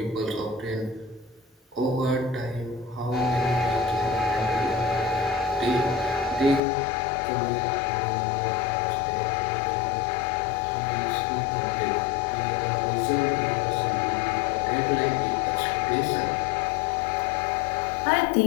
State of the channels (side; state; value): right; drops out; at 6.6 s